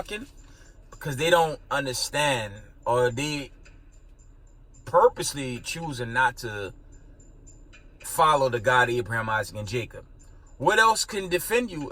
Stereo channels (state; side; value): identical; both; correlation 1.00